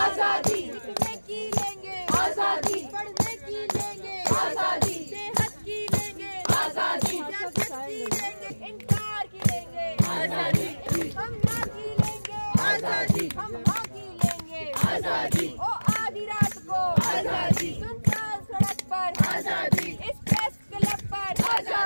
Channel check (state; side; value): inverted; both; correlation -1.00